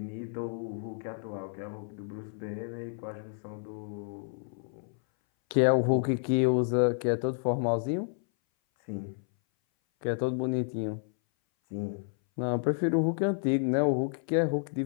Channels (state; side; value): silent; right; 57 dB below the other